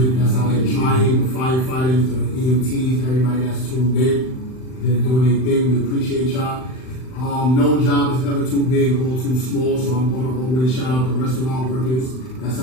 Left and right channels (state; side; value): late; right; 39 ms